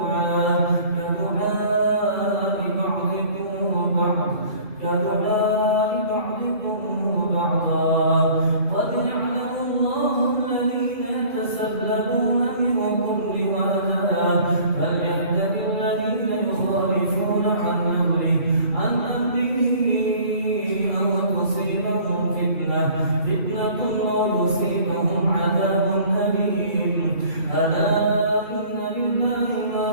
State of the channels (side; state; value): left; late; 2.6 ms